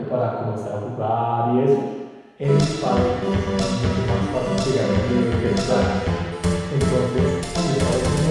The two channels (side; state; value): both; identical; correlation 1.00